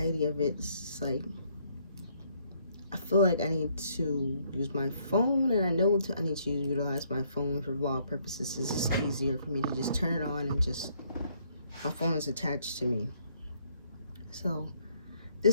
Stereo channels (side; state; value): both; inverted; correlation -0.69